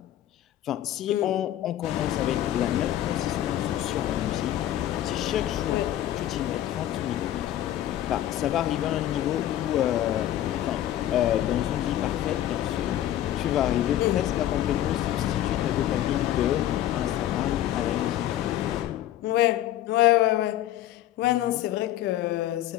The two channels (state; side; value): quieter; right; 12.8 dB